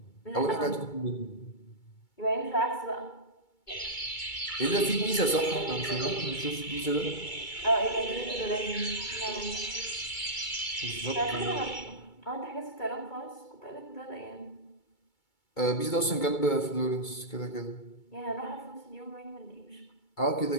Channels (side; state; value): right; late; 2.3 ms